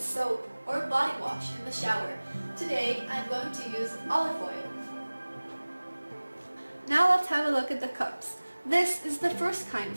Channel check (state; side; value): inverted; both; correlation -1.00